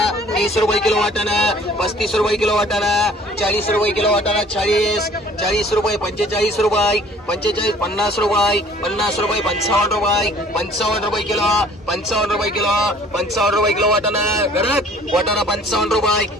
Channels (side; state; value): both; normal; correlation 0.53